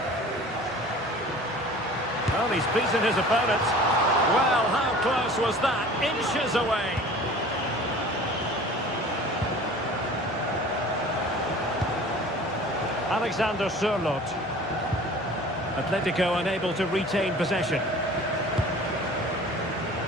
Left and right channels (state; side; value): normal; both; correlation 0.44